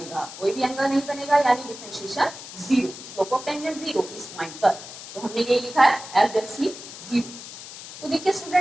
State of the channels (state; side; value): noise; left; hiss, 13 dB below the sound